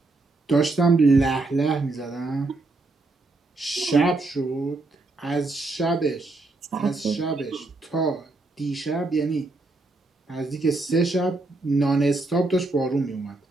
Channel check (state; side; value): quieter; left; 3.2 dB